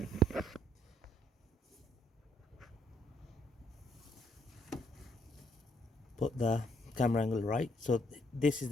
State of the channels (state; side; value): normal; both; correlation 0.69